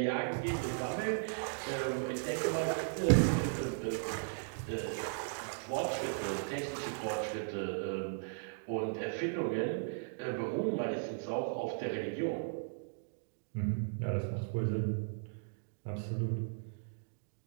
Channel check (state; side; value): silent; left; digital silence